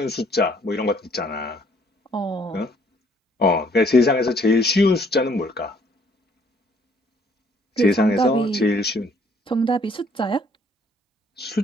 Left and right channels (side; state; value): both; normal; correlation 0.63